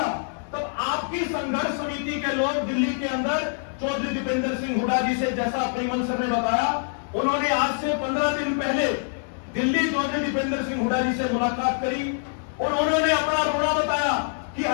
तब आपकी संघर्ष समिति के लोग दिल्ली के अंदर चौधरी दीपेंद्र सिंह हुड्डा जी से, जैसा प्रेमल सर ने बताया, उन्होंने आज से 15 दिन पहले दिल्ली चौधरी दीपेंद्र सिंह हुड्डा जी से मुलाकात करी और उन्होंने अपना रोना बताया कि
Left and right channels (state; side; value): silent; right; digital silence